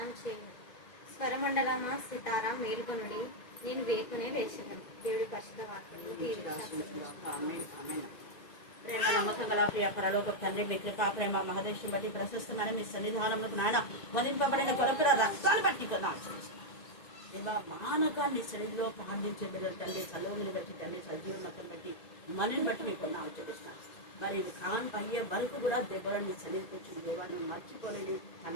చేయను. స్వరమండలమా సితారా మేలుకొనుడి, నేను వేకునే లేచెదను. దేవుడి పరిశుద్ధ వాక్యము ప్రేమ నమ్మకం గల ప్రియ పరలోక తండ్రి, మీ కృపా ప్రేమ మహదేశం బట్టి ప్రశస్తమైన మీ సన్నిధానంలోకి నాయన వధింపబడిన కొరకుల రక్తాలు బట్టి దేవా, మానకాన్ని శరీరంలో ప్రార్థించే బిడ్డలు తండ్రి, చలువని బట్టి తండ్రి, సజీవనతం బట్టి మనని బట్టి మీకు ఆచరిస్తాను. మరి కాన్ అయ్యే వరకు కూడా దెబ్బలని శరీరం దేవాన్ని మర్చిపోలేని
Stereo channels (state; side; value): late; right; 2.0 ms